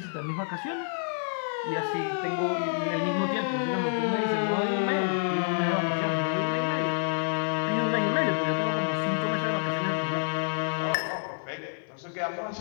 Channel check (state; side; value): silent; right; digital silence